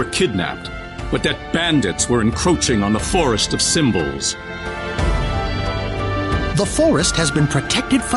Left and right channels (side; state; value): both; identical; correlation 1.00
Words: kidnapped, but that bandits were encroaching on the Forest of Symbols. The forest has been protected